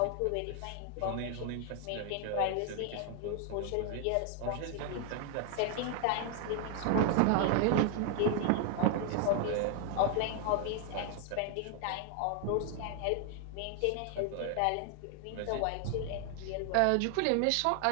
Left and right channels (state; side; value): different; both; correlation 0.00